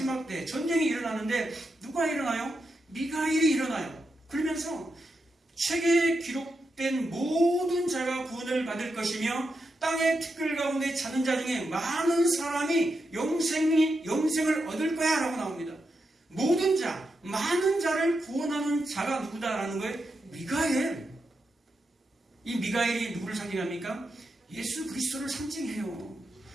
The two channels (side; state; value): both; normal; correlation 0.86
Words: 때 전쟁이 일어나는데 누가 일어나요? 미가엘이 일어나요. 그러면서 책에 기록된 모든 자가 구원을 받을 것이며 땅의 티끌 가운데 자는 자 중에 많은 사람이 영생을 얻을 거야 라고 나옵니다. 모든 자, 많은 자를 구원하는 자가 누구다라는 거예요? 미가엘. 이 미가엘이 누구를 상징합니까? 예수 그리스도를 상징해요.